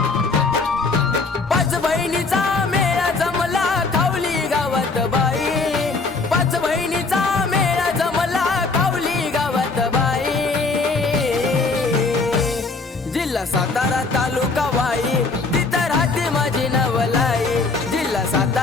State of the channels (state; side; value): quieter; right; 4.0 dB